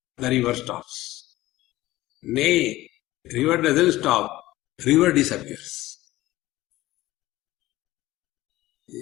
the river stops. Nay, river doesn't stop, river disappears.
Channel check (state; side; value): quieter; right; 16.9 dB